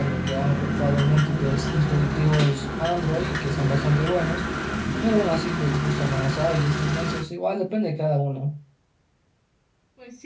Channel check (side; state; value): both; identical; correlation 1.00